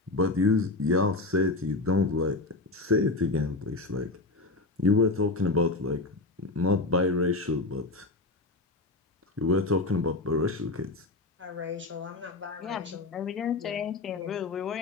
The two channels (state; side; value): quieter; right; 3.2 dB